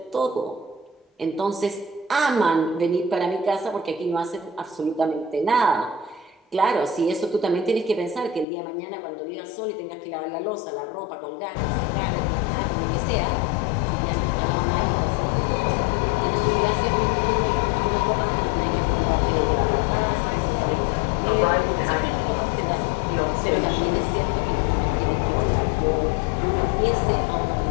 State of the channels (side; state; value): right; drops out; at 8.5 s